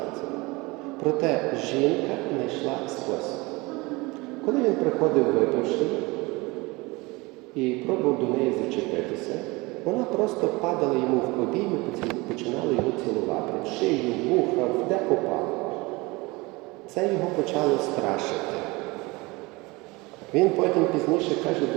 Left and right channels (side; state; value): left; quieter; 23.9 dB